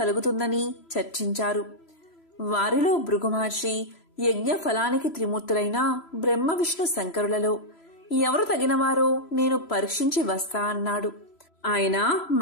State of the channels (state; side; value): late; right; 3.0 ms